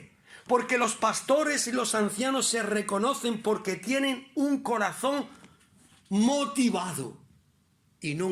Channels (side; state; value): both; identical; correlation 1.00